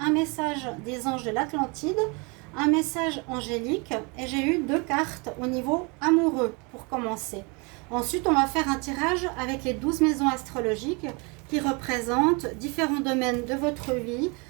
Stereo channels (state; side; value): quieter; left; 30.4 dB